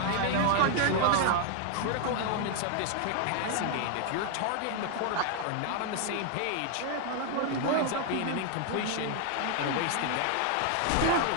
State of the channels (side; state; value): both; different; correlation 0.00